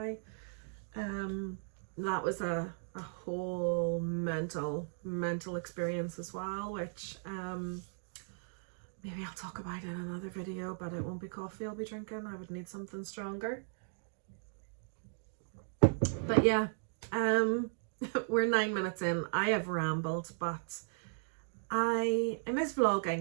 That was a whole mental experience as well, which maybe I'll talk about in another video, but it won't be coffee I'll be drinking. I would need something stronger. But yeah, we're 9 minutes in. I have rambled, but I miss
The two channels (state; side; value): silent; left; digital silence